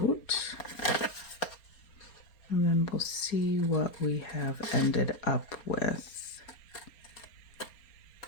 And then we'll see what we have ended up with.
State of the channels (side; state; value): right; late; 4.3 ms